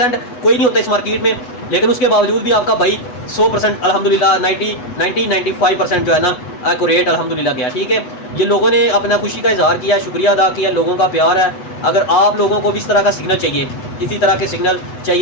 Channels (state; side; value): late; right; 8.1 ms